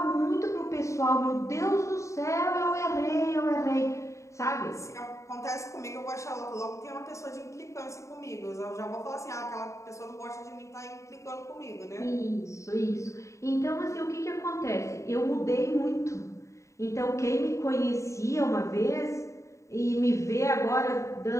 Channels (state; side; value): late; right; 0.14 ms